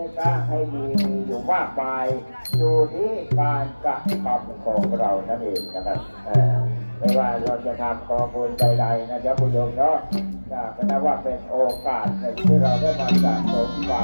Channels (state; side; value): inverted; both; correlation -1.00